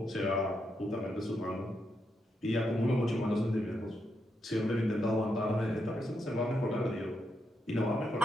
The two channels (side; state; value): both; normal; correlation 0.82